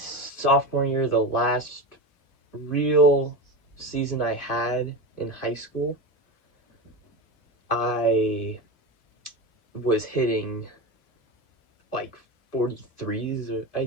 year, the last real season I had in high school, I was hitting like 43s, I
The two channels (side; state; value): right; late; 2.6 ms